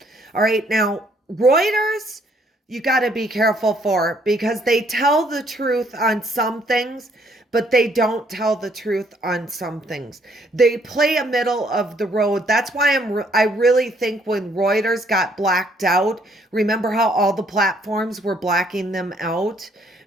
All right, now, Reuters, you got to be careful for because they tell the truth on some things, but they don't tell the truth on some things. They play a middle of the road. That's why I really think when Reuters got blacked out, remember how all the platforms were blacking them out?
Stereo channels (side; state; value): both; normal; correlation 0.66